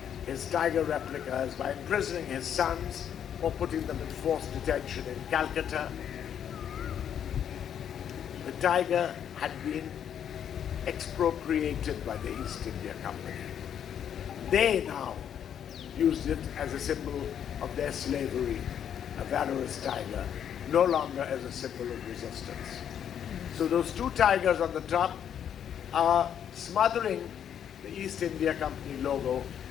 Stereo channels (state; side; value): quieter; right; 9.0 dB